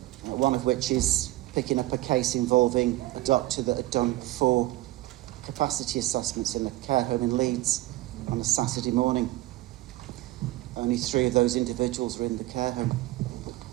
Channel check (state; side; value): quieter; left; 17.4 dB